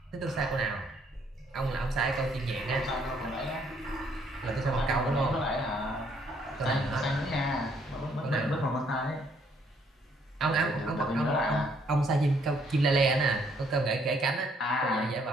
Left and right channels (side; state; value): both; normal; correlation 0.68